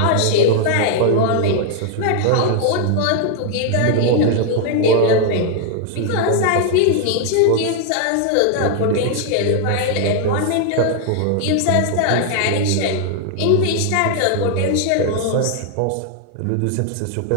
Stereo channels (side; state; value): both; different; correlation 0.00